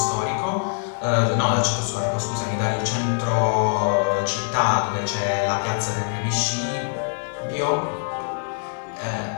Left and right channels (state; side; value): silent; right; digital silence